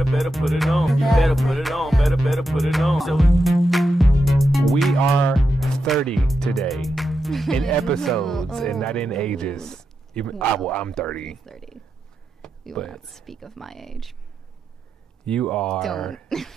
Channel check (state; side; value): normal; both; correlation 0.87